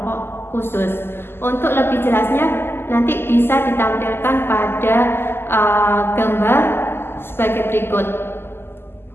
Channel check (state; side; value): late; right; 0.11 ms